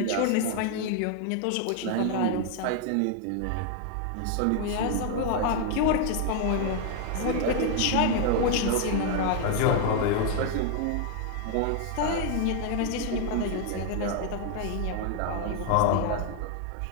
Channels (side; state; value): both; different; correlation 0.00